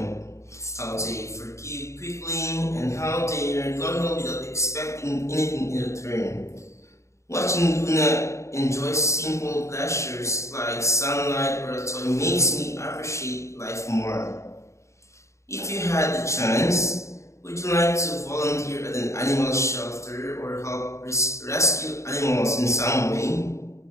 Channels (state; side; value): late; right; 0.14 ms